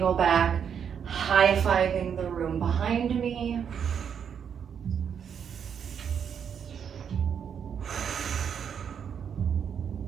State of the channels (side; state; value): left; quieter; 7.7 dB